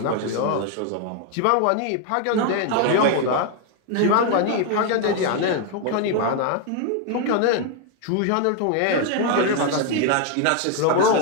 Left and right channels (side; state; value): both; different; correlation 0.01